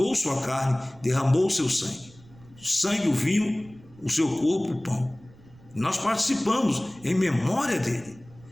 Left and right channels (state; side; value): noise; right; rumble, 24 dB below the sound